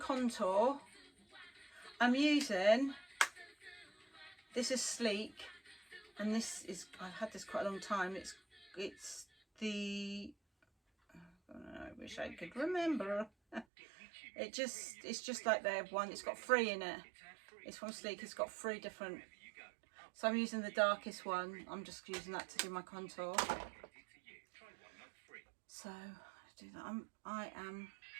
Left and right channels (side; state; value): left; drops out; at 13.7 s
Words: I'm using, this is Sleek, and this is, I've had this quite a long time. It's the, I wish I could remember. It's just like their one. It's got 3 in it. It's from Sleek. It's got 3 different. So I'm using the darkest one. I'm just using that to do my contour. So let's do that. I